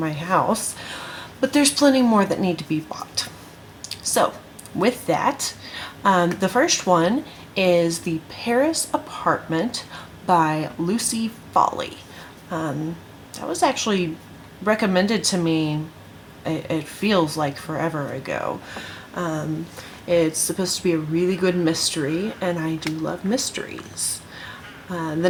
house, but there's plenty more that need to be bought. So with that, the first one is The Paris Apartment by Lucy Foley. That was actually recommended to me, it feels like forever ago. It's supposed to be a really good mystery, and I do love mysteries. The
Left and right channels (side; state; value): both; identical; correlation 1.00